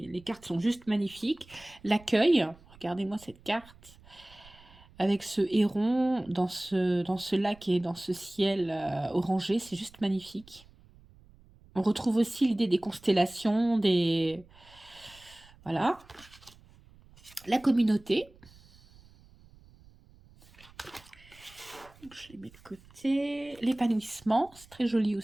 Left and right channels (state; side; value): noise; right; rumble, 25 dB below the sound